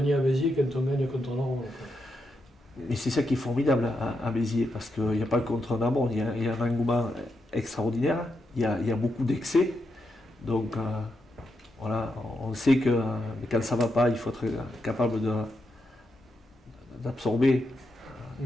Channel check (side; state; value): both; normal; correlation 0.84